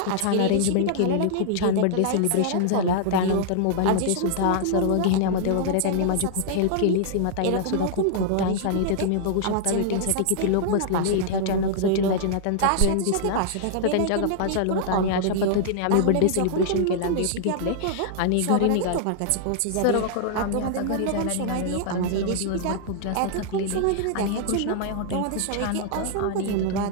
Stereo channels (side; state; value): both; different; correlation -0.01